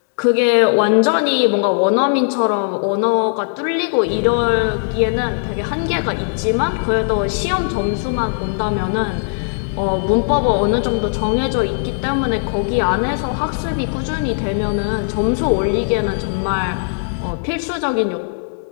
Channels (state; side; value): silent; right; digital silence